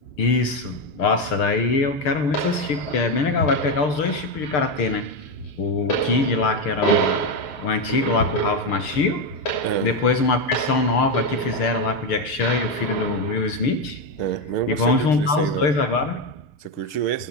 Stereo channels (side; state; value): right; late; 6.7 ms